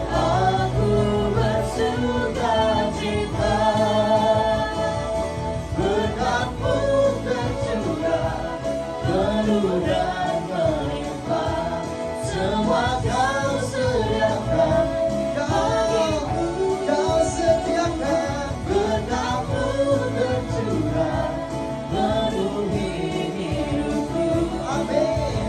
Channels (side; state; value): both; identical; correlation 1.00